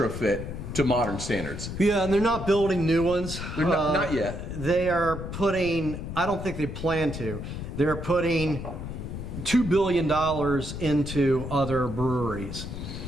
to modern standards. Yeah, and they're not building new ones. They're not yet. They are putting, I don't think they plan to, they're putting $2 billion into other breweries.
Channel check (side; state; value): left; noise; rumble, 7 dB below the sound